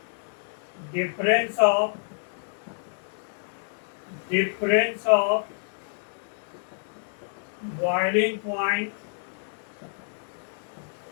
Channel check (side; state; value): right; silent; 59 dB below the other